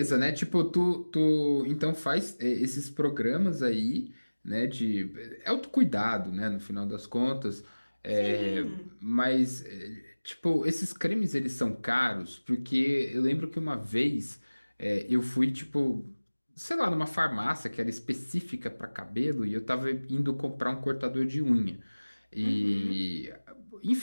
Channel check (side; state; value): both; inverted; correlation -1.00